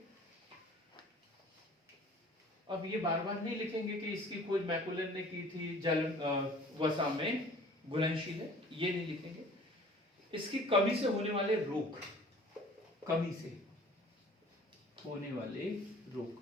अब ये बार बार नहीं लिखेंगे कि इसकी खोज मैकुलन ने की थी, जल वसा में घुलनशील है, ये नहीं लिखेंगे। इसकी कमी से होने वाले रोग, कमी से होने वाले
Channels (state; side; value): normal; both; correlation 0.49